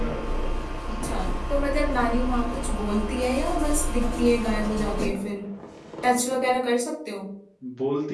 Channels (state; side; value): identical; both; correlation 1.00